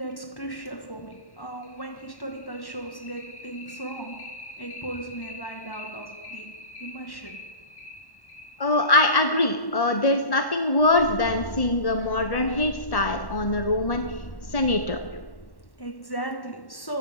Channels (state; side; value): late; right; 1.1 ms